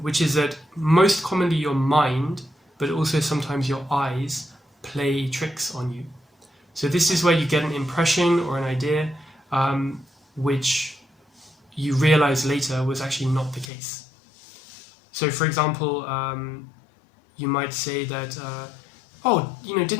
which is that most commonly your mind, but also sometimes your eyes, play tricks on you. So this is where you get an impression or an idea which you realize later was actually not the case. So for example, you might say that, oh,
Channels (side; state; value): right; drops out; at 13.7 s